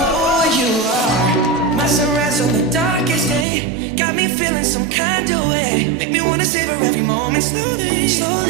you are my sunrise on the darkest day. Got me feeling some kind of way. Make me wanna savor every moment slowly,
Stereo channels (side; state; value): left; drops out; at 3.5 s